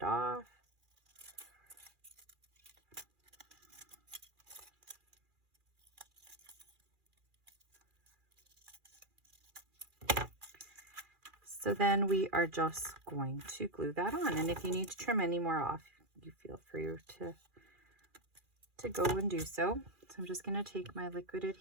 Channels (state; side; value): late; left; 2.4 ms